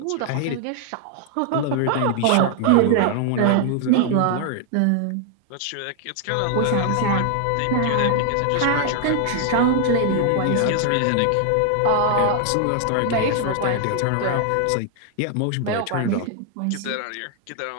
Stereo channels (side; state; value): both; different; correlation 0.00